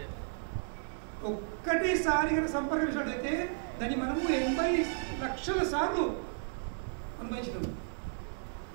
ఒక్కటేసారి కనుక సంపర్కించినట్లయితే దాన్ని మనము 80 లక్షల సార్లు అనుభవించినాము.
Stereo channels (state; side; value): silent; left; 55 dB below the other